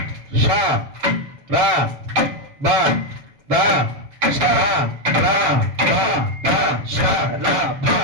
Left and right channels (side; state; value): left; late; 7.5 ms